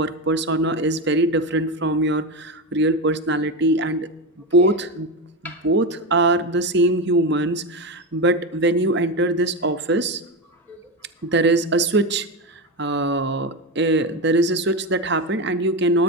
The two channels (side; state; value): both; normal; correlation 0.16